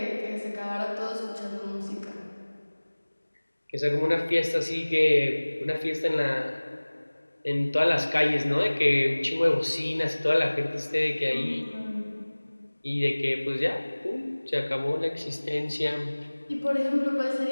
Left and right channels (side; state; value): both; inverted; correlation -1.00